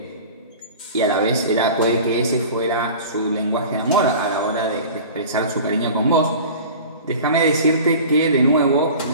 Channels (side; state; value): both; inverted; correlation -0.39